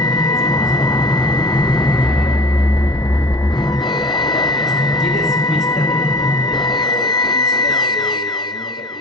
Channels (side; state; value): both; normal; correlation 0.41